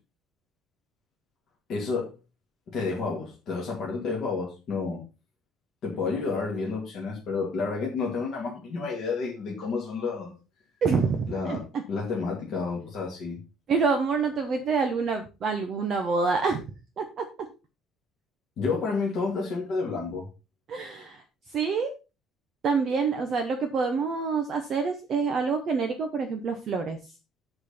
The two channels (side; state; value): both; normal; correlation 0.59